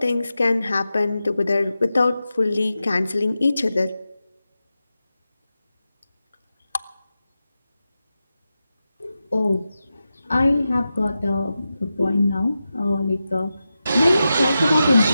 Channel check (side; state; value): both; inverted; correlation -0.91